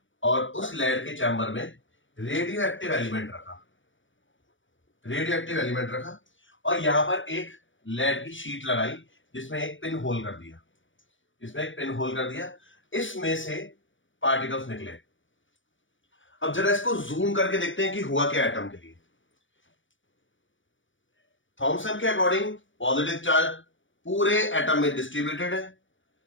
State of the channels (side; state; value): right; late; 0.56 ms